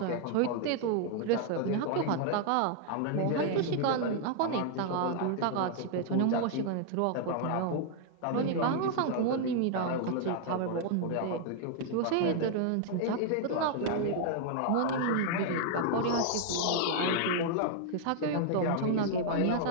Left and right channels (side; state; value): both; different; correlation 0.00